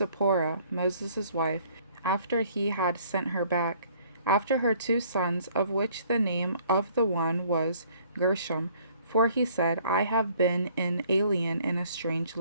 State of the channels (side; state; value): both; inverted; correlation -0.59